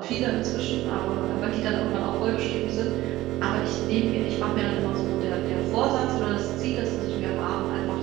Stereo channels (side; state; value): left; quieter; 16.5 dB